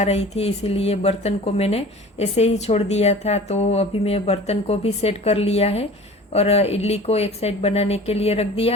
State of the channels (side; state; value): both; normal; correlation 0.42